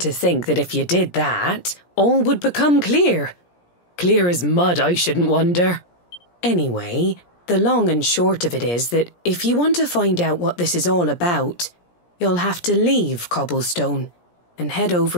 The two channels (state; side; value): late; right; 17 ms